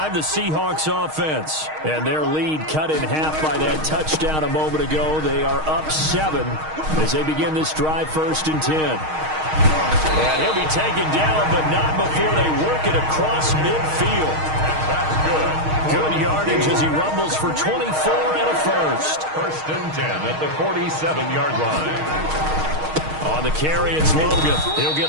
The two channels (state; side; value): late; left; 6.4 ms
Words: the Seahawks offense. And their lead cut in half by that touchdown a moment ago. They are up 7 as they begin this drive, 1st and 10. And he'll be taken down, but not before they work it across midfield. That's good. Good yardage as he rumbles for 24 and a 1st. 1st and 10 at the 47-yard line. On the carry, it's Logan. He'll get